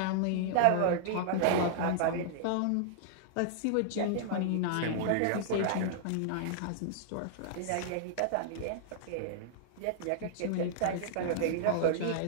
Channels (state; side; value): different; both; correlation -0.01